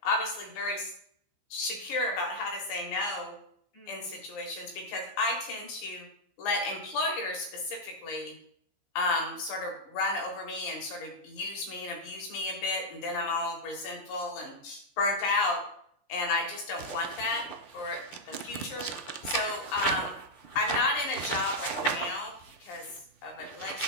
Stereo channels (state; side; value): late; right; 15 ms